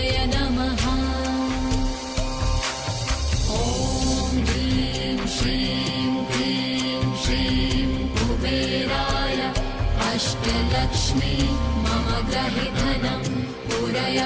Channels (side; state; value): both; identical; correlation 1.00